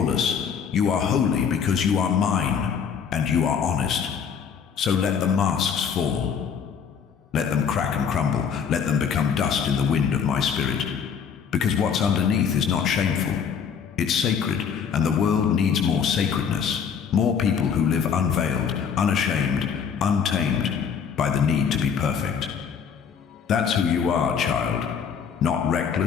You are holy because you are mine, and you are honest. So let the masks fall. Let them crack and crumble. Let them become dust in the wind of my spirit. Because what's underneath is not shameful. It's sacred, and the world needs more sacredness. More people who live unveiled, unashamed, untamed by the need to be perfect. That's who you are, child. Not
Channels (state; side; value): quieter; right; 7.0 dB